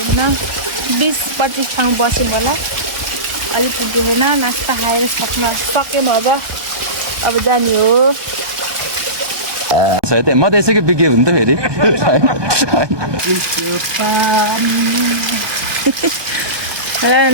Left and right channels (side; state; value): left; late; 1.0 ms